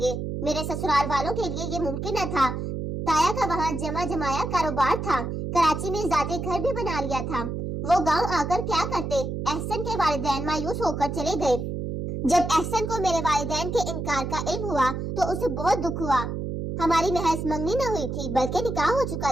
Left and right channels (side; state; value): right; noise; hum, 4 dB below the sound